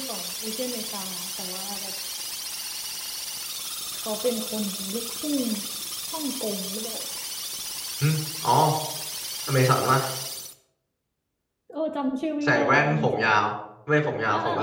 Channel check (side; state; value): both; identical; correlation 1.00